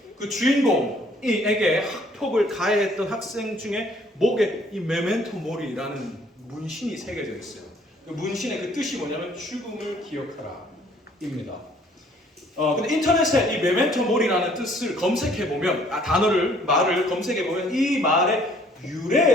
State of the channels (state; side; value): normal; both; correlation 0.60